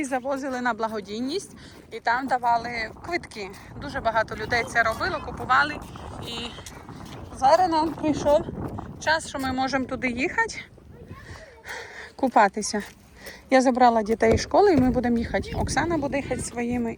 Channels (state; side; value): identical; both; correlation 1.00